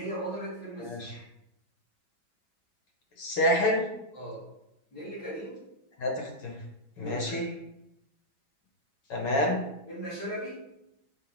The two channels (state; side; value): late; right; 7.3 ms